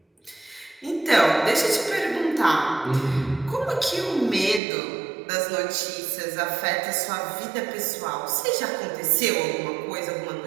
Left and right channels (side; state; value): left; drops out; at 4.6 s